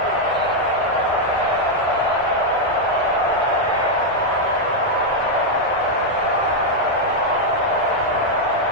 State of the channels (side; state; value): both; normal; correlation -0.01